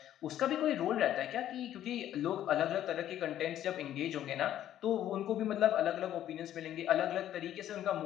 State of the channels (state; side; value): quieter; right; 11.7 dB